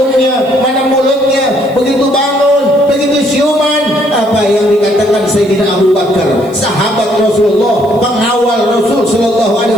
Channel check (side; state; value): left; noise; hiss, 28 dB below the sound